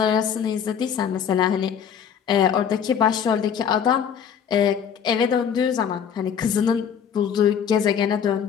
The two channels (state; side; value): quieter; right; 7.9 dB